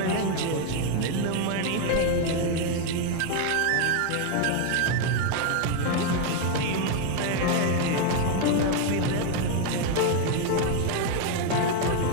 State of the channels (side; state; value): both; different; correlation 0.01